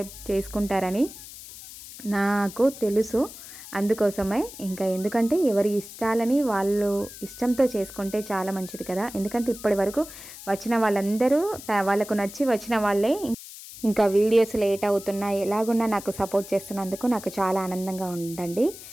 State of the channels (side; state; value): left; noise; hiss, 15 dB below the sound